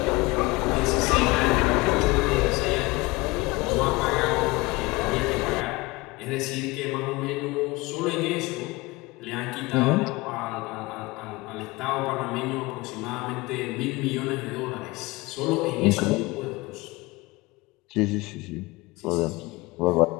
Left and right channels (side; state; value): right; quieter; 22.8 dB